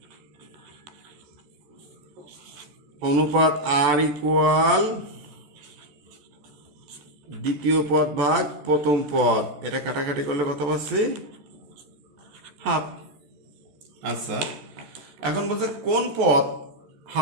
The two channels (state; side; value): late; left; 14 ms